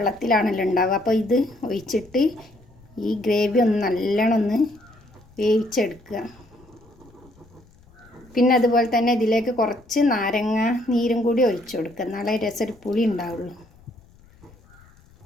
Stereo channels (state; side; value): noise; left; rumble, 27 dB below the sound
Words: ഉണ്ടാവുക. അപ്പോൾ ഇത് ഒഴിച്ചിട്ട് ഈ ഗ്രേവി ഒന്ന് നല്ലോണം ഒന്ന് വേവിച്ചെടുക്കുക. പിന്നെ അതുപോലെ തന്നെ ഇതിലേക്ക് കുറച്ച് നാരങ്ങ നീരും കൂടി ഒഴിച്ചു കൊടുക്കുക. എന്നാലേ രസം പുളി ഉണ്ടാവുള്ളൂ.